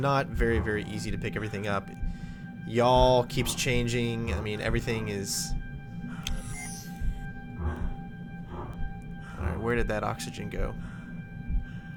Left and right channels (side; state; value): both; identical; correlation 1.00